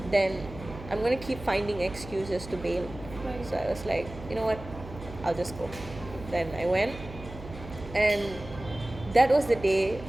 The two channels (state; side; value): noise; right; hum, 14 dB below the sound